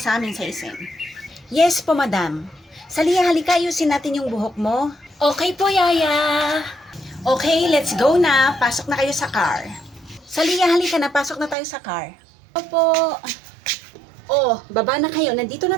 sa amin sa SM. Yes po, Madam. Salia, halika, ayusin natin yung buhok mo. Okay po, Yaya. Okay, let's go na. Pasok na kayo sa car. Salia, halika na. Pasok na tayo sa car. Opo. Oh, baba na kayo. Nandito na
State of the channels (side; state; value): left; drops out; at 11.6 s